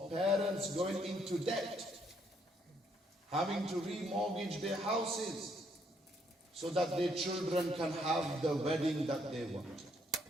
parents going into debt, having to remortgage their houses so that their children can have the wedding that they want.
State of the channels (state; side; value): normal; both; correlation 0.70